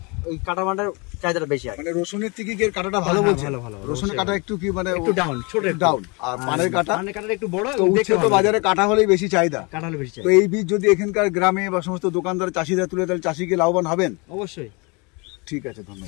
ওই কাটা পানটার চাহিদাটা বেশি আছে। মানে রসুনের থেকে কি কাটাটা ভালো বলছে? ভালো। রসুনের কাটা একটু কি মানে একটু ডাউন, ছোট ডাউন। আর পানের কাটা একটু বড়। তো বাজারে কাটা হলেই বেশি চাহিদা, কাটা হলে বেশি চাহিদা। তো এই বীজ যদি এখানকার গ্রামে বা সমস্ত দোকানদার চাষিরা তুলে, তাহলে চাষিকে লাভবান হবেন অবশ্যই। ঠিক আছে,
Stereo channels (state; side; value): quieter; right; 29.2 dB